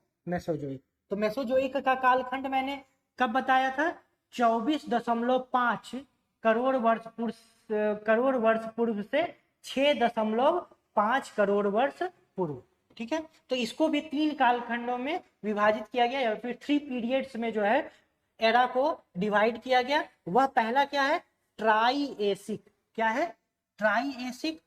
मेसोजोइक। तो मेसोजोइक का कालखंड मैंने कब बताया था? 24.5 करोड़ वर्ष पूर्व से 6.5 करोड़ वर्ष पूर्व। ठीक है। तो इसको भी 3 कालखंडों में विभाजित किया गया, या फिर 3 पीरियड्स में जो है एरा को डिवाइड किया गया। वह पहला क्या है? ट्राइएसिक। क्या है? ट्राइएसिक।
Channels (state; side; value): identical; both; correlation 1.00